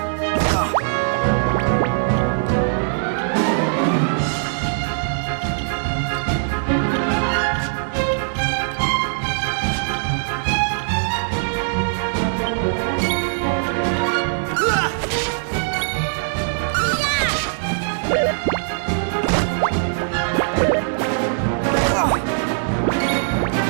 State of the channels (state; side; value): silent; left; 65 dB below the other